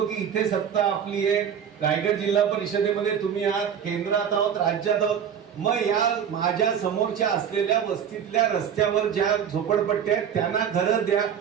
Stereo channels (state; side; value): quieter; left; 8.2 dB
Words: की इथे सत्ता आपली आहे, रायगड जिल्हा परिषदेमध्ये तुम्ही आहात, केंद्रात आहोत, राज्यात आहोत, मग या माझ्या समोरच्या असलेल्या वस्तीतल्या रस्त्यावर ज्या झोपडपट्ट्या आहेत त्यांना घरं द्या,